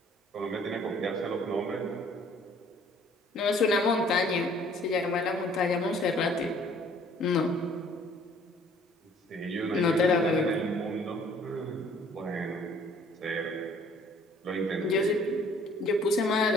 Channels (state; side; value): normal; both; correlation 0.57